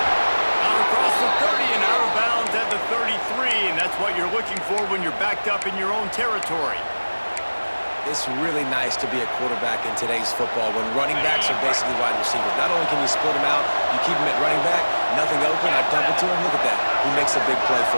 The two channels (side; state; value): both; inverted; correlation -1.00